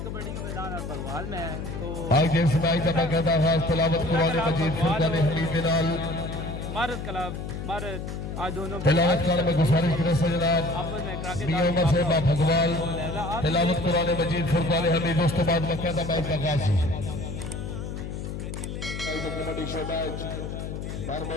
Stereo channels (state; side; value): noise; left; hum, 6 dB below the sound